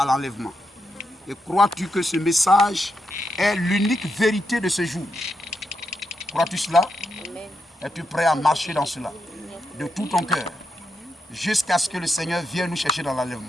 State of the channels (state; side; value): normal; both; correlation 0.84